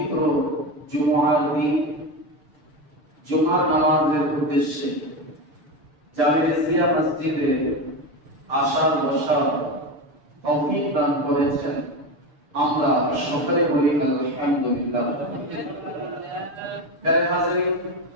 জুমার দিন জুমার নামাজের উদ্দেশ্যে জামিয়া মসজিদে আসার বসার তৌফিক দান করেছেন। আমরা সকলে বলি আলহামদুলিল্লাহ।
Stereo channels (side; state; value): left; late; 6.8 ms